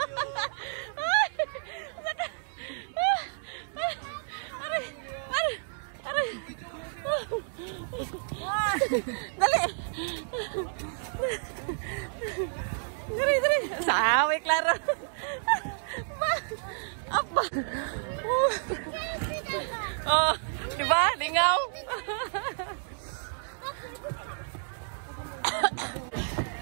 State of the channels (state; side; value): silent; left; digital silence